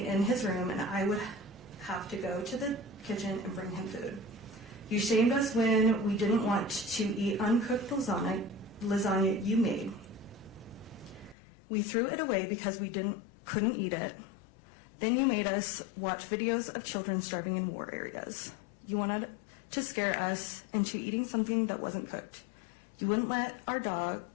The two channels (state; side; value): drops out; right; at 11.4 s